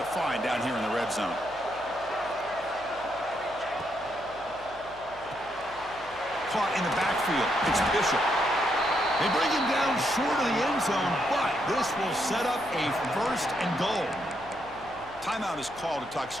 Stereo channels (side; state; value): left; noise; hum, 22 dB below the sound